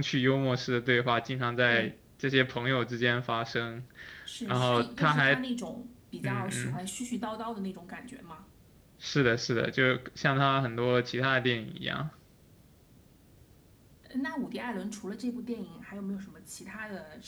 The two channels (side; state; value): both; identical; correlation 1.00